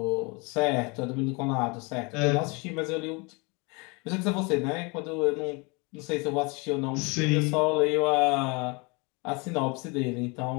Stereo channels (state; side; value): quieter; right; 29.4 dB